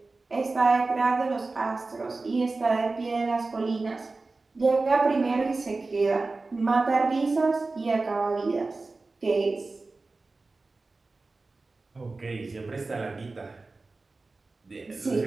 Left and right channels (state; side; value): quieter; left; 3.6 dB